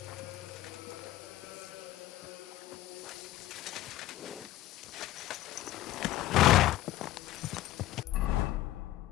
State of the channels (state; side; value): quieter; right; 15.4 dB